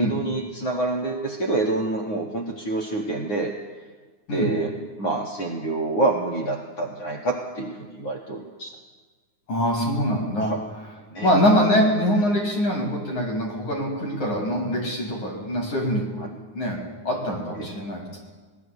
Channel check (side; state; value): right; late; 9.6 ms